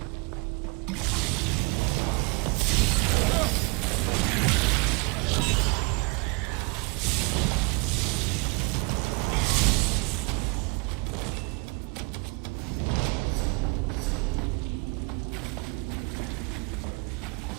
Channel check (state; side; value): quieter; left; 30.3 dB